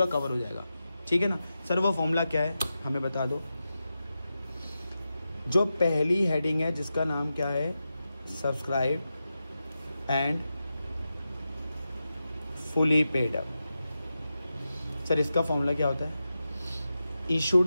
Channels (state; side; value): inverted; both; correlation -0.91